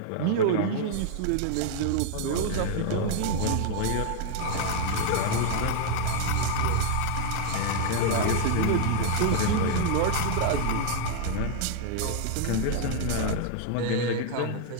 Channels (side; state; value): both; different; correlation 0.00